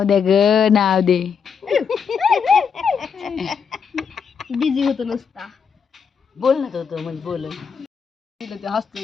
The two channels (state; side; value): quieter; right; 6.4 dB